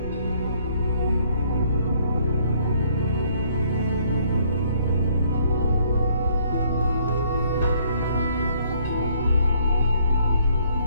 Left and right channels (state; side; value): inverted; both; correlation -0.64